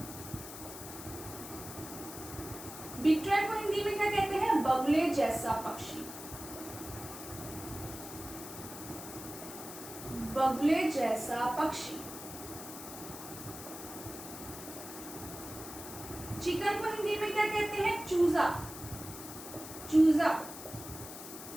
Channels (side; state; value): left; noise; hiss, 11 dB below the sound